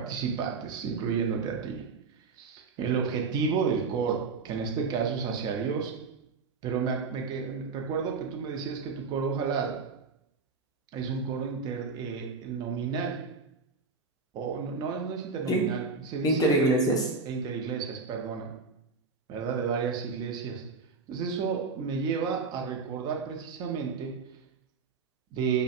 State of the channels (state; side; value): quieter; left; 4.5 dB